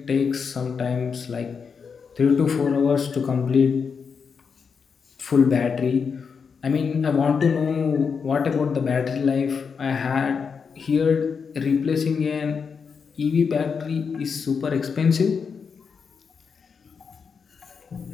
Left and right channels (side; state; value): right; quieter; 5.9 dB